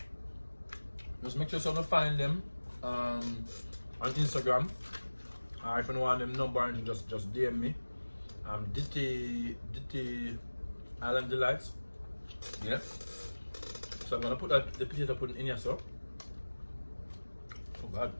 just make sure you find them on Instagram. Or if you don't want them number, and just DM me. Ditty Island Delights. Yeah. So I'm gonna put the potato pudding in here, so. Oh God.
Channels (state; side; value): inverted; both; correlation -1.00